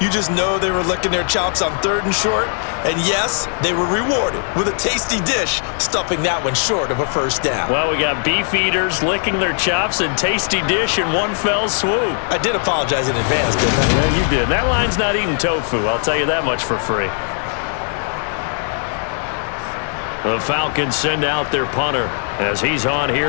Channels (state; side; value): silent; right; 56 dB below the other